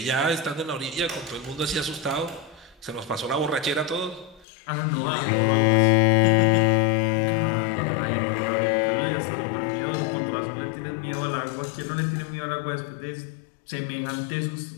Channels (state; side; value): drops out; right; at 4.5 s